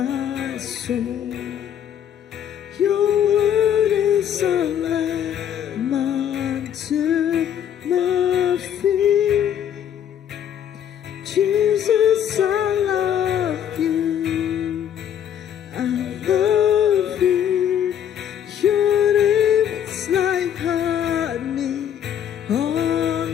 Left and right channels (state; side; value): quieter; right; 9.6 dB